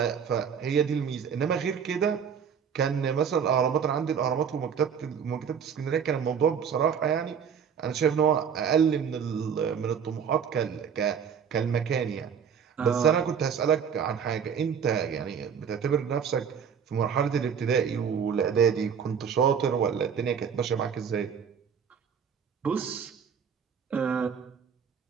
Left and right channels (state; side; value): quieter; left; 7.3 dB